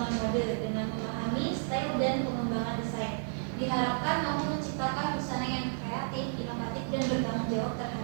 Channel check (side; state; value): left; silent; digital silence